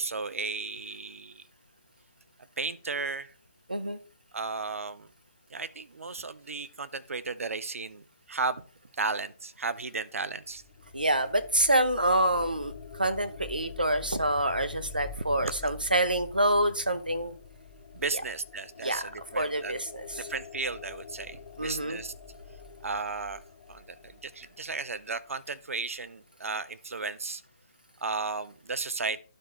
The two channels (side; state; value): both; inverted; correlation -0.48